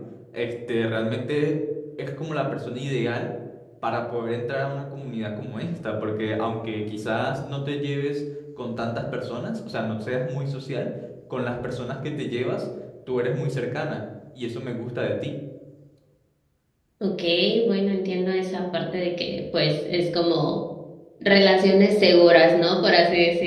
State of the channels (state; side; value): identical; both; correlation 1.00